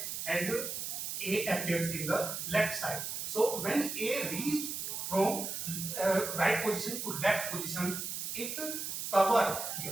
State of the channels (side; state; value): right; noise; hiss, 4 dB below the sound